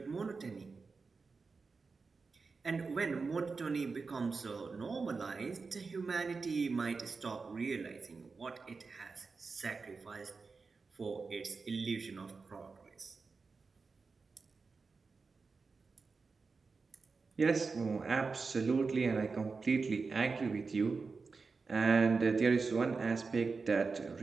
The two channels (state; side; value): quieter; left; 4.5 dB